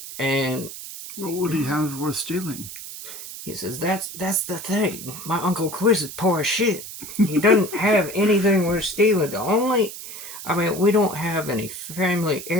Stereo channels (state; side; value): noise; right; hiss, 11 dB below the sound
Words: And What would he have worth stealing? he says that's the thing. My Uncle Quiz is poor as shit. He doesn't have anything worth stealing. We don't have any family